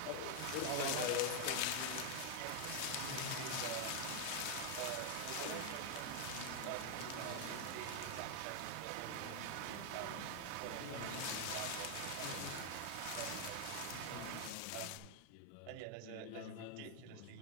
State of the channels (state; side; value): different; both; correlation 0.00